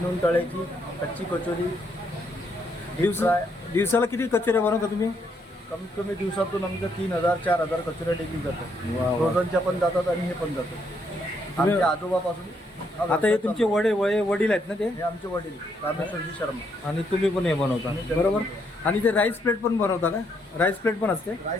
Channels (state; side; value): normal; both; correlation 0.74